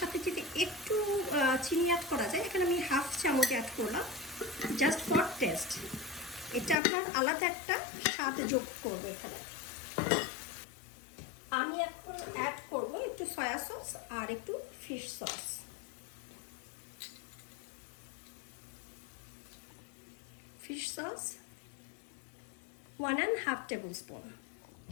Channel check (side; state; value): right; drops out; at 6.8 s